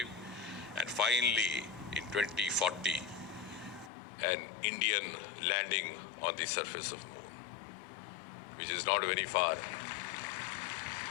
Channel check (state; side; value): drops out; right; at 3.9 s